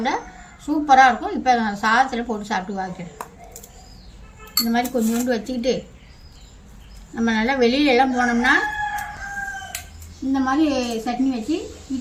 சூப்பராக இருக்கும். இப்போ நான் சாதத்தில் போட்டு சாப்பிட்டு பார்க்குறேன். இந்த மாதிரி கொஞ்சோண்டு வச்சுக்கிட்டு நம்ம நல்லா வெளியிலலாம் போனோம்னா இந்த மாதிரி சட்னி வச்சு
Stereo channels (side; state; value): both; identical; correlation 1.00